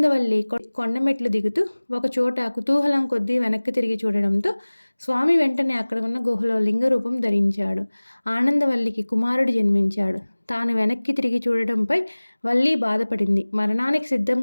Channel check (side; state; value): both; inverted; correlation -1.00